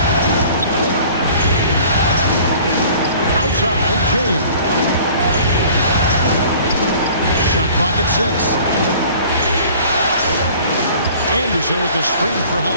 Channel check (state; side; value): inverted; both; correlation -0.49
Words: Outside, James. Shot clock at 6. Anderson with the screen for